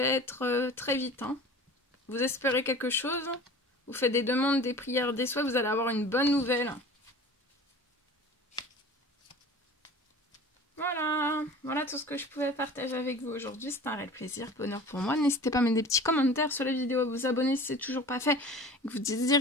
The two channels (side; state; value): both; normal; correlation 0.40